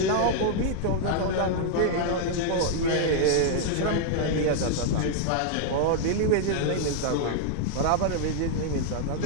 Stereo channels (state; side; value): different; both; correlation -0.01